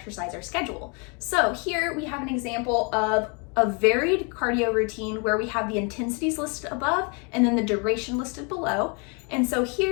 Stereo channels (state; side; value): quieter; right; 34.3 dB